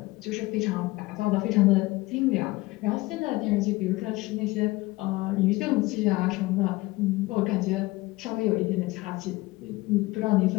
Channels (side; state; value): right; quieter; 20.8 dB